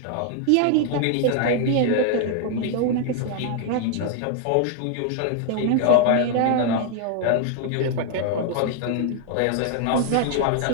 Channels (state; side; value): different; both; correlation 0.00